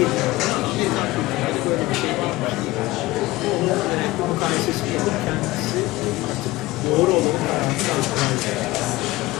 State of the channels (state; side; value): quieter; right; 19.3 dB